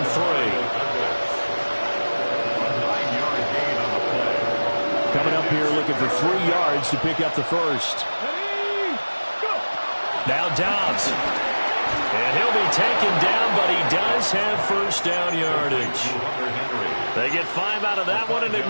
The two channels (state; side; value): inverted; both; correlation -1.00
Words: 3. Coming up here looking for 3 yards to pick up the first. Now Dobbs. And he'll be taken down, but he does have first down yardage. They get 5 out of that one, and it